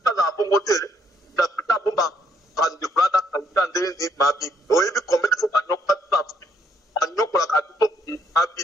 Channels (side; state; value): both; normal; correlation 0.70